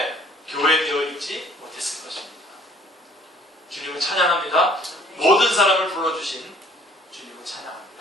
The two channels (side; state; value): both; normal; correlation 0.56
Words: 교회되어 있지 못했을 것입니다. 주님을 찬양합니다. 모든 사람을 불러주신 주님을